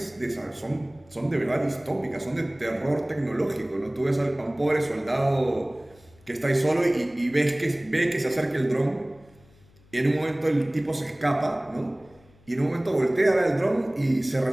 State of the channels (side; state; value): left; noise; hum, 29 dB below the sound